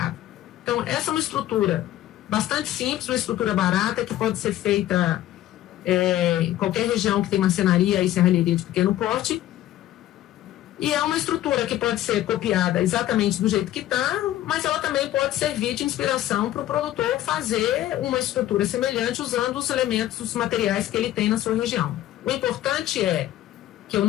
Então, essa é uma estrutura bastante simples, uma estrutura barata, que pode ser feita em qualquer região que tem marcenaria e serralheria de pequeno porte. E é uma estrutura que pode ser copiada exatamente do jeito que está, mas ela também pode servir de inspiração para o produtor fazer uma estrutura semelhante usando os elementos, os materiais que ele tem na sua região. O importante é que eu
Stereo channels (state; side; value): quieter; right; 13.7 dB